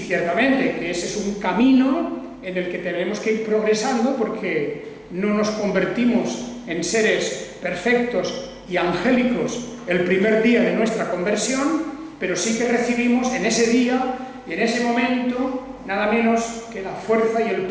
que ese es un camino en el que tenemos que ir progresando, porque no nos convertimos en seres perfectos y angélicos el primer día de nuestra conversión, pero sí que recibimos en ese día y en ese momento nada menos que la fuerza y el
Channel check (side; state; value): both; identical; correlation 1.00